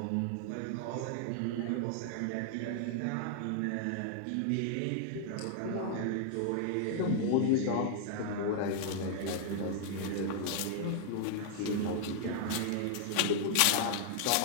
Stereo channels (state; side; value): different; both; correlation -0.01